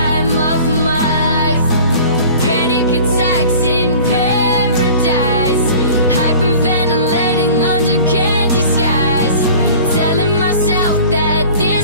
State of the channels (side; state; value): both; inverted; correlation -0.43